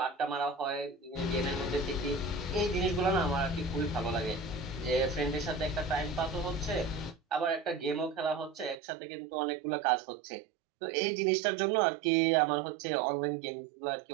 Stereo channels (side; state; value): left; drops out; at 8.8 s